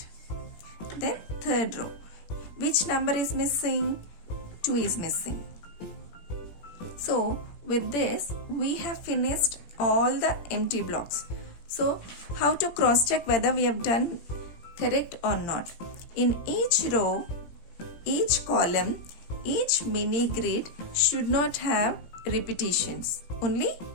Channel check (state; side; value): late; right; 17 ms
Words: Then third row, which number is missing? 2 is missing. So with this, we have finished all the empty blocks. So how to cross check whether we have done correct or not? In each row, each column, each mini grid should not have repetitions. Only